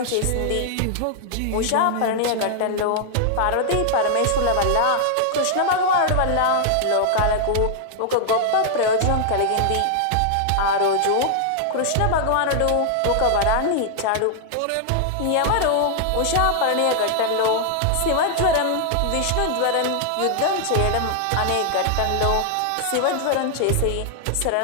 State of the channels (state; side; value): different; both; correlation 0.00